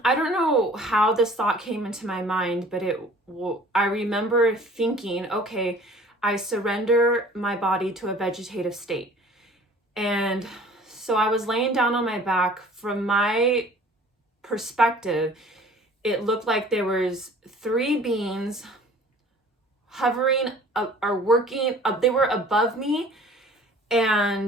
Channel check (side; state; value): both; normal; correlation 0.49